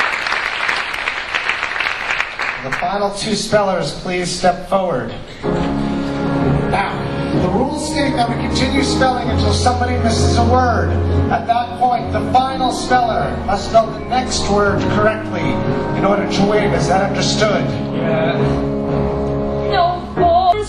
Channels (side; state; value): both; identical; correlation 1.00